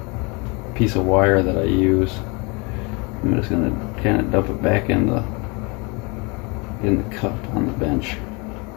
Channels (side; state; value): right; quieter; 29.3 dB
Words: piece of wire that I use, I'm just gonna kind of dump it back in the cup on the bench.